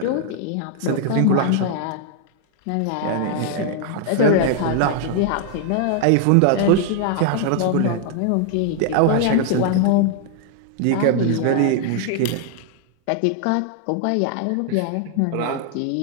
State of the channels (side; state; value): both; different; correlation 0.00